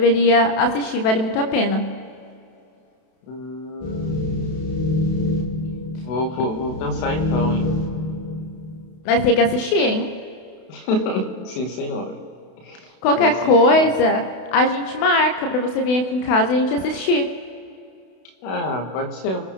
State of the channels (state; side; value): late; right; 32 ms